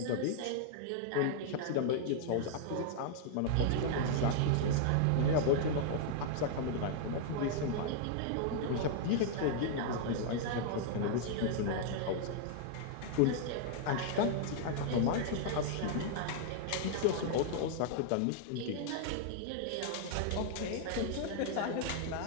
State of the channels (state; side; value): different; both; correlation -0.01